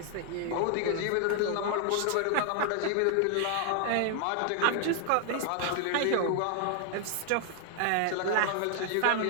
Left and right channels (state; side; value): different; both; correlation 0.00